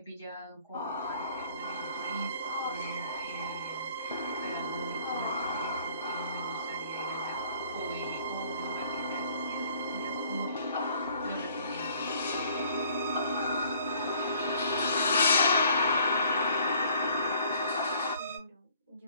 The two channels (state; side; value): inverted; both; correlation -0.58